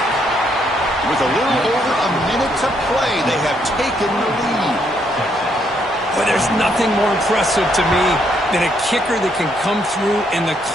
With a little over a minute to play, they have taken the lead. But there's nothing more impressive to me than a kicker that can come through in the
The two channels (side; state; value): both; normal; correlation 0.73